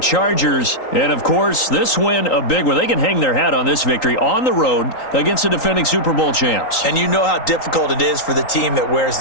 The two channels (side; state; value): right; late; 3.8 ms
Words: And, of course, this win, a big one. They can hang their hat on this victory on the road against the defending Super Bowl champs. And you know how difficult it is for the team that wears